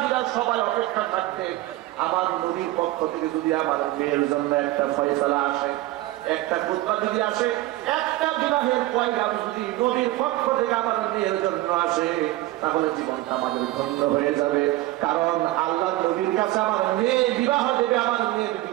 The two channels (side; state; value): left; quieter; 17.0 dB